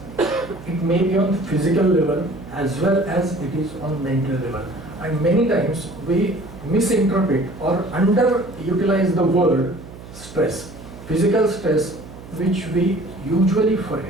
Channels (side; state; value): right; noise; hum, 16 dB below the sound